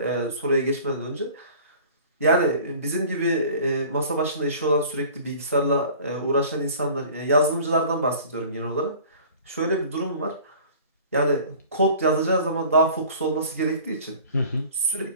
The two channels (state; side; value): inverted; both; correlation -0.46